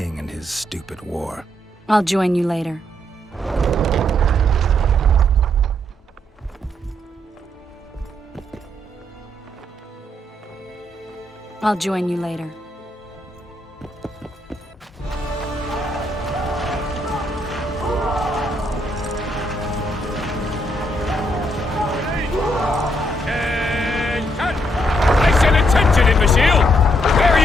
and his stupid war. I'll join you later. I'll join you later. I said attention, imbecile! Where are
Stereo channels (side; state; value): both; normal; correlation 0.74